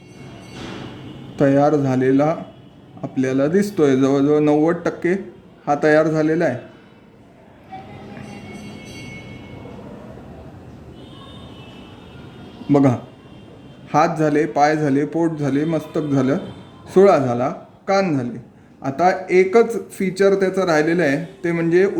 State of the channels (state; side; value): identical; both; correlation 1.00